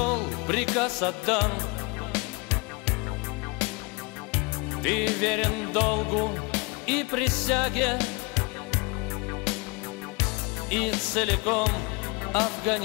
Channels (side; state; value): right; quieter; 28.4 dB